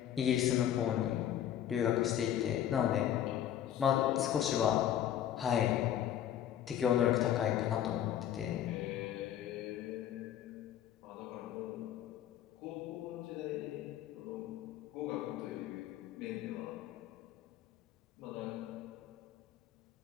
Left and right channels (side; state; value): right; quieter; 10.8 dB